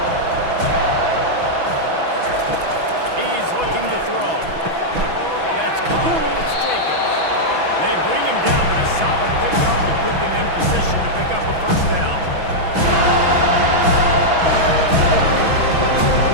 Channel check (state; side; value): late; left; 6.1 ms